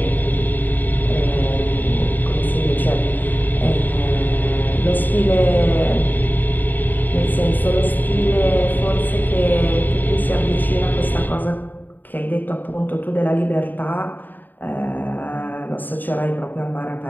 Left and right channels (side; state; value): right; late; 0.088 ms